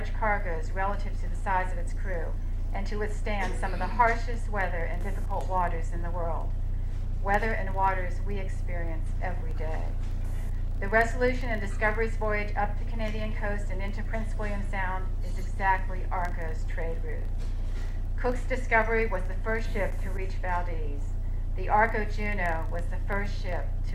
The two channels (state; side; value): identical; both; correlation 1.00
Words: cargoes relative to the size of its crew and to withstand some of the harshest weather and difficult waters in the world, weather and waters we experience every day. The Resolution and Discovery's voyage up the Canadian coast and into Prince William Sound is exactly Arco's trade route. Cook's Discovery was the first ship to reach Valdez. The Arco Juno was the first ship